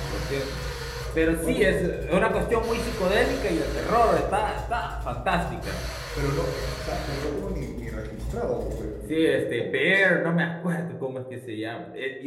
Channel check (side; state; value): both; identical; correlation 1.00